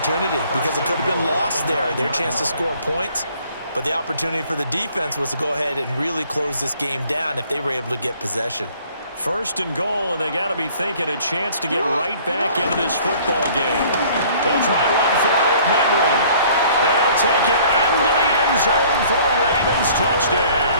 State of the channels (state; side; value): inverted; both; correlation -0.55